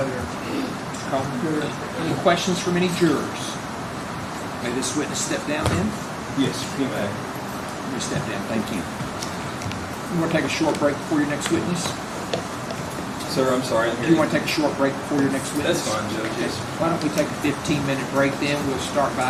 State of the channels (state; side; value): identical; both; correlation 1.00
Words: Coleman, any questions from any jurors? May this witness step down then? Yes, you may. Let me step down, thank you. You want to take a short break before your next witness? Sir, I'm sorry. Do you want to take a short break before your next witness? That's fine, Judge. Okay. Why don't we take a 15-minute break then? We'll start